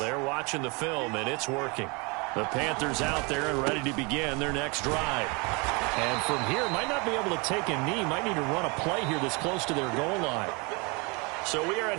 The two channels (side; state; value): left; quieter; 29.5 dB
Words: watching the film, and it's working. The Panthers out there and ready to begin their next drive. And from here, might not be able to take a knee. Might need to run a play here that's close to their goal line. So we are